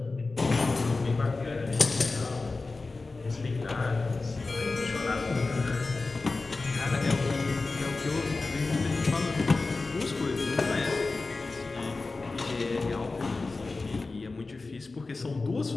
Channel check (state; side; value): quieter; right; 3.7 dB